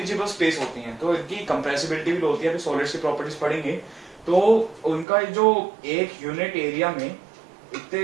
स्पेस होती है, तो इनकी कंप्रेसिबिलिटी भी होती है। अभी सॉलिड्स की प्रॉपर्टीज पढ़ेंगे। तो उनका जो एक यूनिट एरिया में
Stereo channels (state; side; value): drops out; left; at 5.1 s